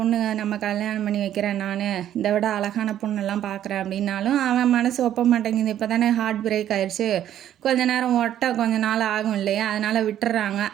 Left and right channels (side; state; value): left; quieter; 11.2 dB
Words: நம்ம கல்யாணம் பண்ணி வைக்கிறேன், நான் இதை விட அழகான பொண்ணெல்லாம் பார்க்குறேன் அப்படின்னாலும் அவன் மனசு ஒப்ப மாட்டேங்குது. இப்போ தானே ஹார்ட் பிரேக் ஆயிடுச்சு, கொஞ்ச நேரம் கொஞ்ச நாள் ஆகும் இல்லையா, அதனால் விட்டுறாங்க.